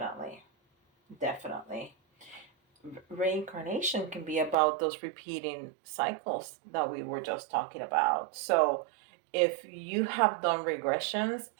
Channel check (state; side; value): drops out; left; at 4.5 s